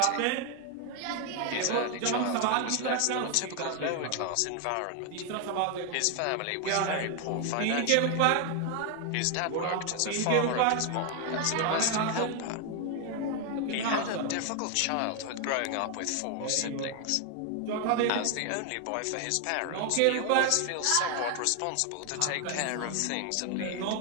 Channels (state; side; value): different; both; correlation 0.01